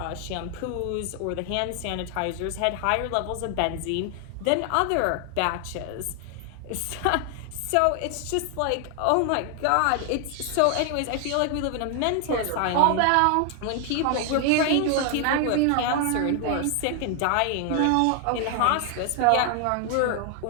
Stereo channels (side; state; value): both; different; correlation 0.00